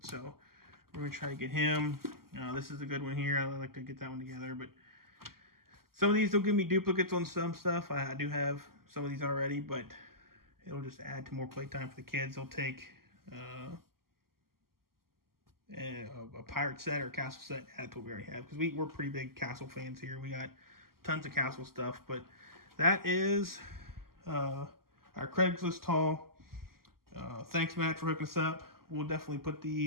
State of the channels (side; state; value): left; late; 0.92 ms